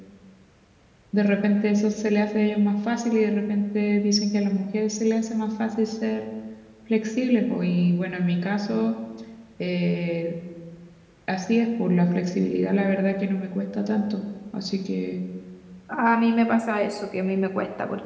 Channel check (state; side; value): identical; both; correlation 1.00